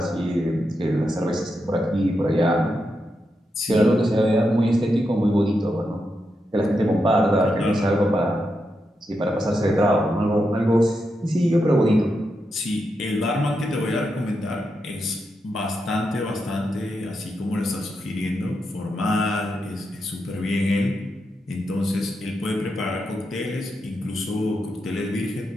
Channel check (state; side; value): normal; both; correlation 0.85